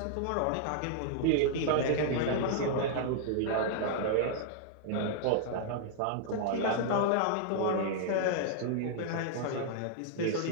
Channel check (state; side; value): different; both; correlation -0.01